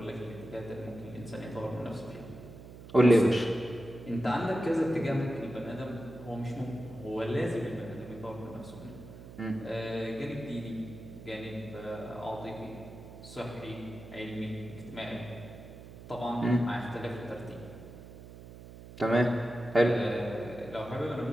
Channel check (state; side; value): noise; right; hum, 15 dB below the sound